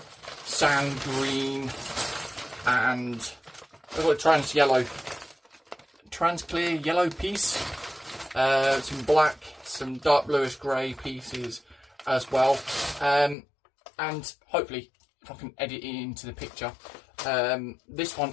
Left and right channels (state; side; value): drops out; right; at 13.4 s